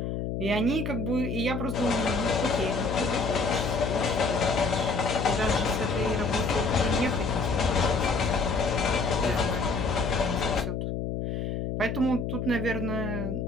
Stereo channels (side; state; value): left; noise; hum, 3 dB below the sound